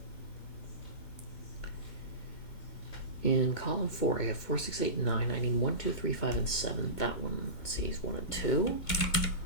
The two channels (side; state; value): right; late; 2.2 ms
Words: In column 4, I have 4, 6, 8, 9. I need 1, 2, 3, 5, and 7. That one sees 1 and 2.